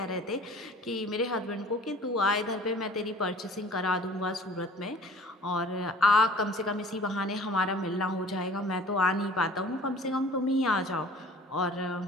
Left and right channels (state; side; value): normal; both; correlation 0.48